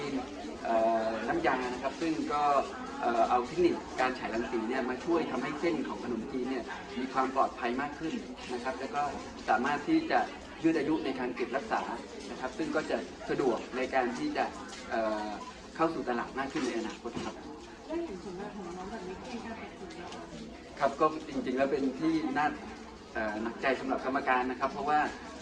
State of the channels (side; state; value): both; identical; correlation 1.00